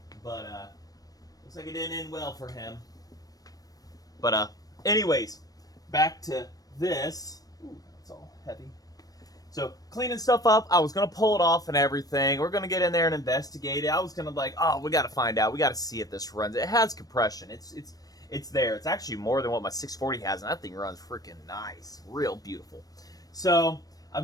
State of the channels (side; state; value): right; late; 0.18 ms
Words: But, looks like it didn't end well for him. But, anyways, back to this. Ooh, that's all heavy. So, cleaning stuff up, I was going to pull it off and everything. We're going to get in there and investigate it. I was going to like, oh, we got to find out. We got to see if this runs. It has compression. It's there. It's actually more than what my 640 has, and that thing runs freaking nice. Real beautiful. So,